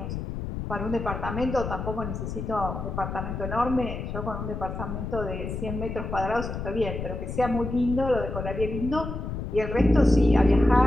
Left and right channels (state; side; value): noise; left; rumble, 5 dB below the sound